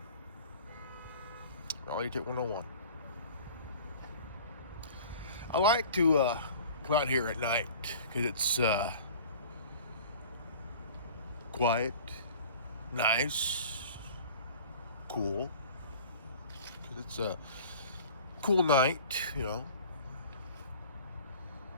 Reality Check 101. I like to come out here at night because it's quiet, nice, cool. Because it's a cool night, Even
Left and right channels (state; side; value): inverted; both; correlation -0.44